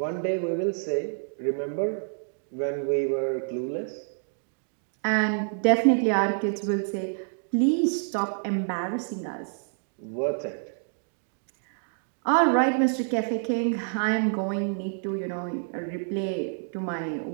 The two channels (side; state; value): left; silent; digital silence